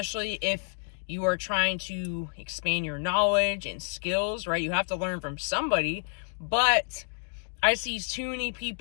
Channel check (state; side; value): silent; right; digital silence